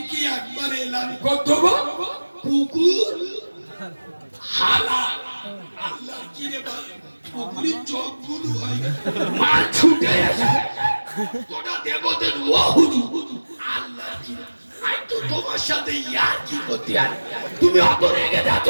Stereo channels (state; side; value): inverted; both; correlation -1.00